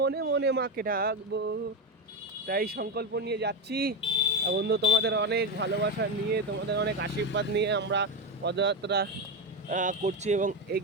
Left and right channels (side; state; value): both; normal; correlation 0.14